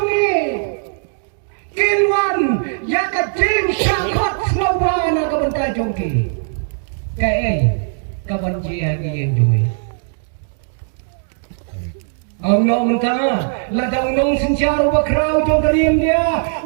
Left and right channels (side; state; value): left; silent; digital silence